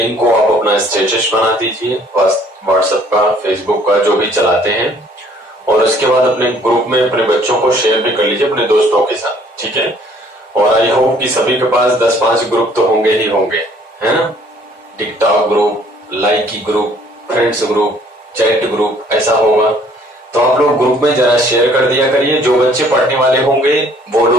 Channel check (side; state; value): both; normal; correlation 0.59